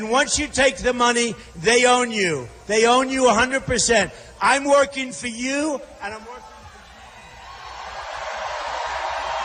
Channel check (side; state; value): both; identical; correlation 1.00